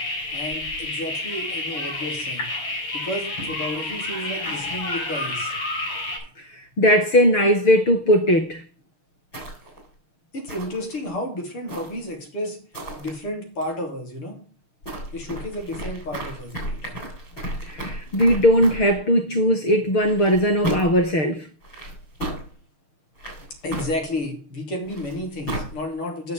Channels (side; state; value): right; late; 6.5 ms